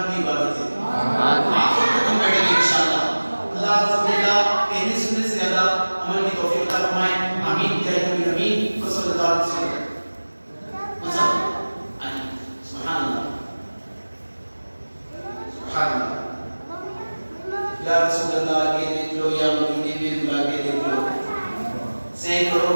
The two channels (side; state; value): both; inverted; correlation -1.00